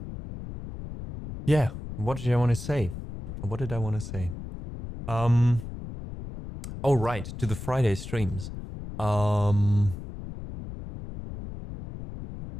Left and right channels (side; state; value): left; noise; rumble, 10 dB below the sound